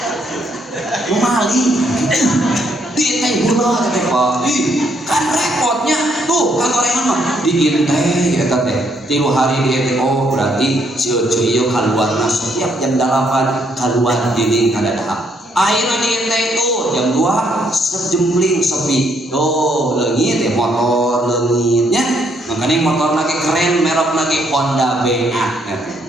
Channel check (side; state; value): both; normal; correlation 0.71